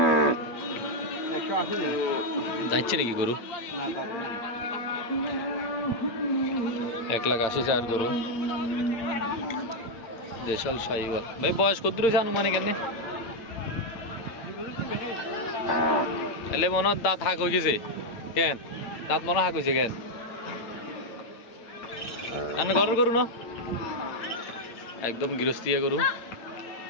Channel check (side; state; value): right; late; 8.8 ms